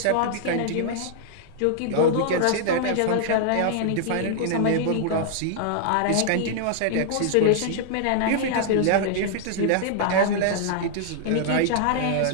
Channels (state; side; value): different; both; correlation -0.01